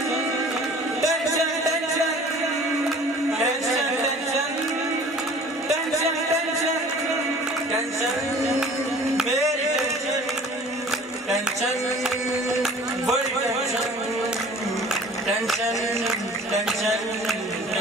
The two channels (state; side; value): normal; both; correlation 0.47